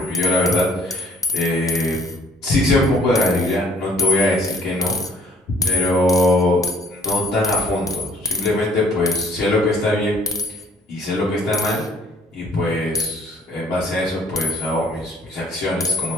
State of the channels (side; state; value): both; normal; correlation 0.56